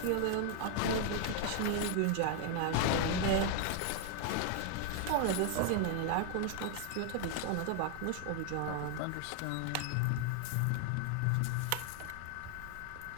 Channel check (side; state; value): both; different; correlation 0.00